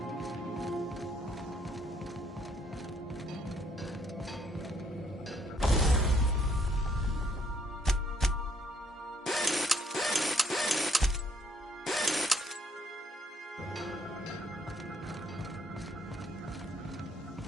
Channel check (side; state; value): both; normal; correlation 0.67